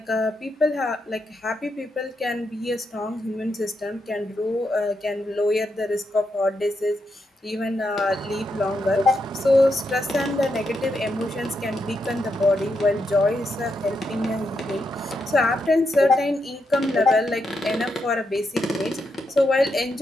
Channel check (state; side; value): normal; both; correlation 0.82